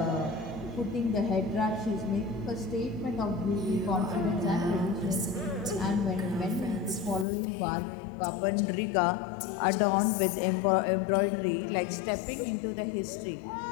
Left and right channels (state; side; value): drops out; right; at 7.2 s